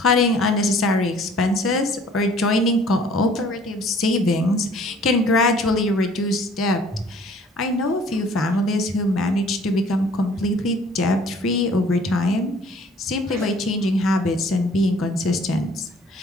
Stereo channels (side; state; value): both; normal; correlation 0.54